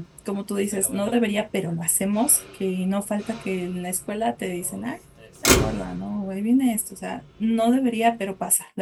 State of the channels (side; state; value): both; identical; correlation 1.00